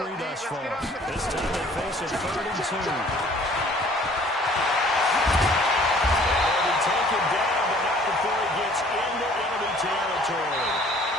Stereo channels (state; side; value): normal; both; correlation 0.54